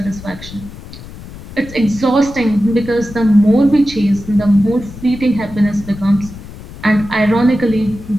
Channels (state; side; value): noise; left; rumble, 15 dB below the sound